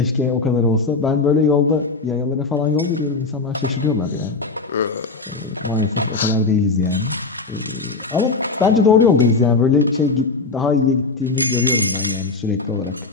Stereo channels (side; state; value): right; quieter; 4.0 dB